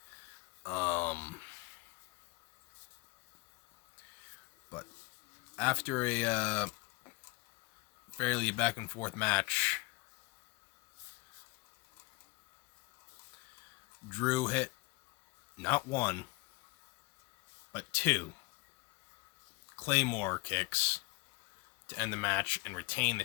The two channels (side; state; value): right; quieter; 25.0 dB